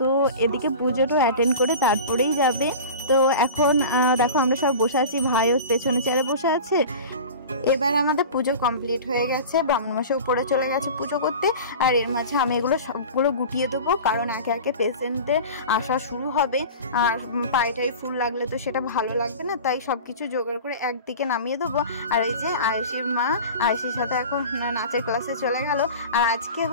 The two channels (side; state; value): both; inverted; correlation -0.35